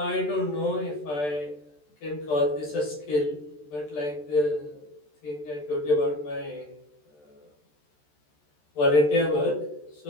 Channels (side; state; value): right; late; 14 ms